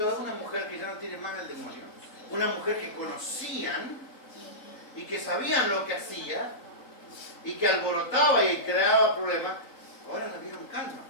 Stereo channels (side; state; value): right; late; 3.7 ms